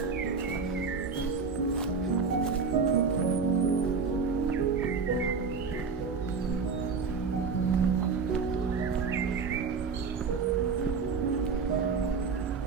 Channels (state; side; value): quieter; left; 5.2 dB